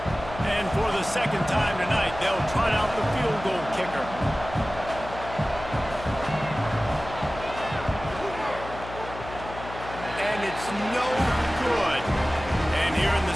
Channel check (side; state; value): left; noise; hum, 12 dB below the sound